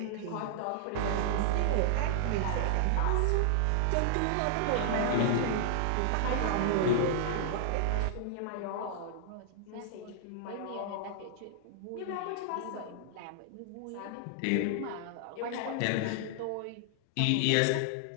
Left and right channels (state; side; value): different; both; correlation 0.00